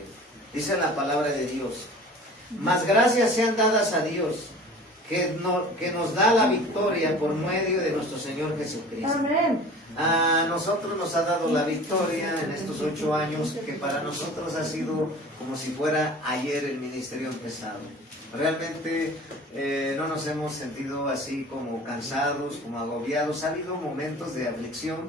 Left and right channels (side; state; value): both; normal; correlation 0.42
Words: Dice la palabra de Dios: mas gracias sean dadas a Dios, que nos da la victoria por medio de nuestro Señor Jesucristo. Amén. A nosotros nos ha dado la victoria en estos 8 años, que para nosotros ha sido como si fuera ayer el ministerio empezado. Realmente no nos hemos sentido así como cansados, como agobiados. Ha habido momentos de aflicción,